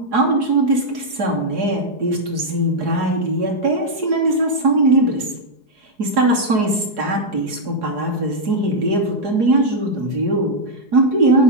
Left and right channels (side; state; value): left; late; 4.8 ms